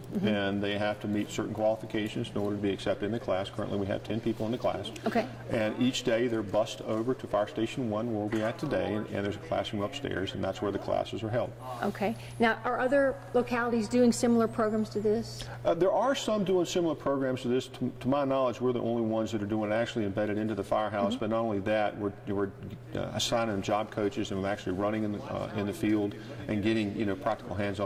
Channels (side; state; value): both; identical; correlation 1.00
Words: and they have to meet certain qualifications in order to be accepted in the class. Currently we have 10 people in the class. Okay. And each day they're bused over to Fire Station 1 where we're at today, and there's a classroom upstairs, and that's where the classes are held. Okay. Now, are other localities doing similar programs to this? There are some doing similar programs to this. To my knowledge, we're the only ones that are doing it actually embedded into the firehouse, but not only that, we're assigning them job coaches and actually running in the field and getting practical